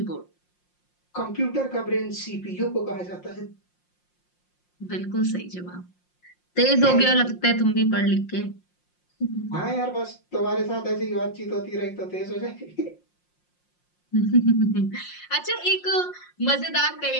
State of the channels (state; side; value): late; right; 5.6 ms